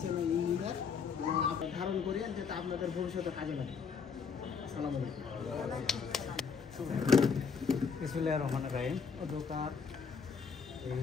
ইঞ্জিনিয়ার ধারণ করিয়ে যাতে আপনাদের ভবিষ্যতে কাজে লাগে। আসসালামু আলাইকুম। বিসমিল্লাহির রহমানির রহিম। দোকান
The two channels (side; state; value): right; quieter; 5.9 dB